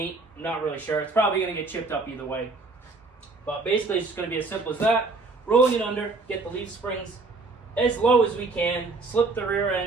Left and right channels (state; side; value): quieter; left; 3.6 dB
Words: I'm not really sure. It's probably going to get chipped up either way. But basically it's just going to be as simple as that. Rolling it under, get the leaf springs as low as we can, slip the rear